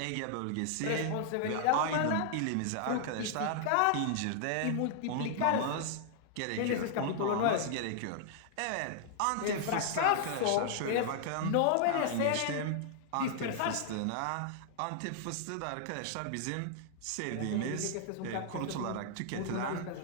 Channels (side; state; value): both; different; correlation -0.01